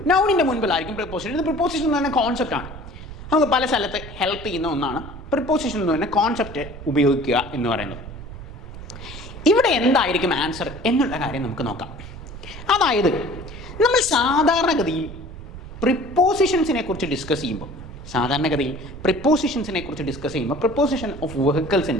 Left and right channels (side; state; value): right; noise; rumble, 13 dB below the sound